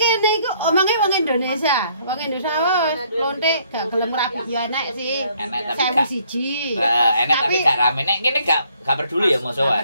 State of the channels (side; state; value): both; inverted; correlation -0.65